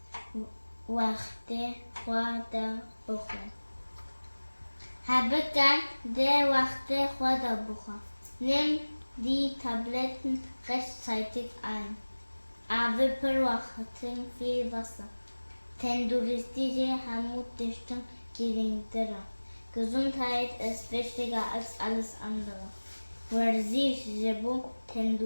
Wachte vor der Woche. Nimm die Tabletten rechtzeitig ein. Aber beobachten viel Wasser. Tenduristische Hamutdichtung geringer. Gesundheit ist wichtiger als alles andere. Verzicht Jebu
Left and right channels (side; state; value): both; inverted; correlation -1.00